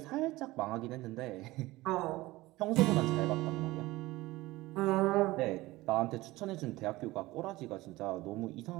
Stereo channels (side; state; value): left; quieter; 19.2 dB